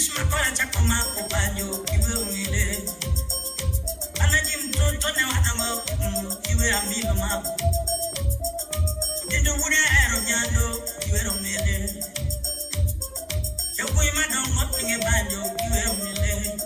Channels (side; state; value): both; identical; correlation 1.00